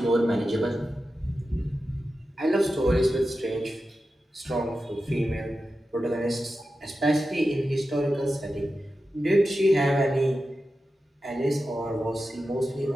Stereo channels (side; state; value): both; normal; correlation 0.92